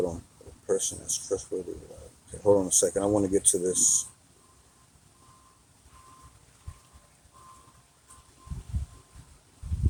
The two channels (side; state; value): both; identical; correlation 1.00